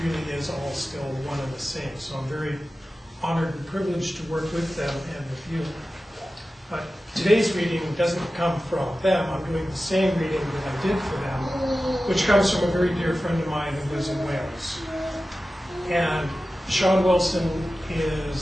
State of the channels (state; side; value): normal; both; correlation 0.95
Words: really is all still one and the same. So I'm very honored and privileged to work with them and with you. But today's reading doesn't come from them. I'm doing the same reading that I did for them, which comes from a very dear friend of mine who lives in Wales. And Sean Wilson